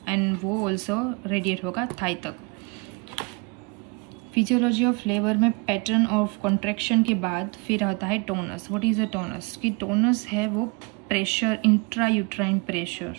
एंड वो ऑल्सो रेडिएट होगा थाई तक। फिजियोलॉजी ऑफ लेबर में पैटर्न ऑफ कॉन्ट्रैक्शन के बाद फिर आता है टोनस। What is a टोनस? कि टोनस है वो प्रेशर, इंट्रा यूट्राइन प्रेशर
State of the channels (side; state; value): left; quieter; 30.2 dB